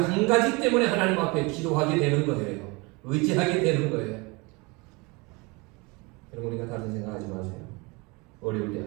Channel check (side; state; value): left; quieter; 26.9 dB